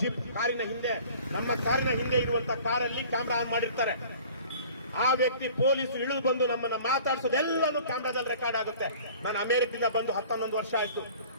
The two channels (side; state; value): both; inverted; correlation -0.47